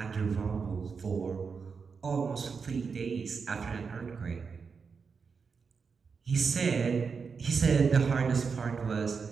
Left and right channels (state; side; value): quieter; left; 5.5 dB